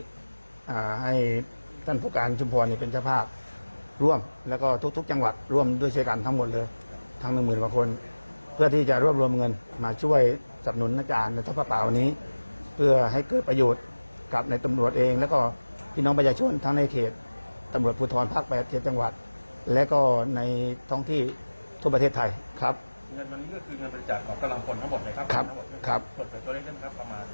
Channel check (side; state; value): both; inverted; correlation -1.00